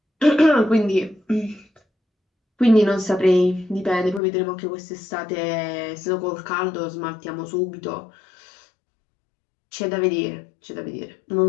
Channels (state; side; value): drops out; right; at 4.2 s